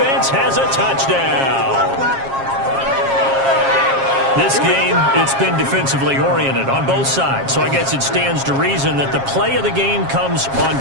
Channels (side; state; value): left; late; 7.4 ms